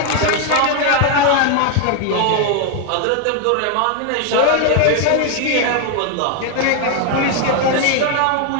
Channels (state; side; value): different; both; correlation 0.01